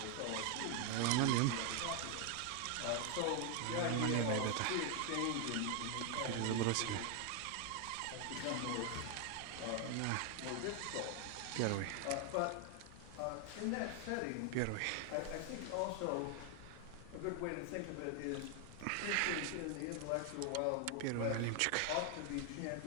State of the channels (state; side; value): different; both; correlation 0.00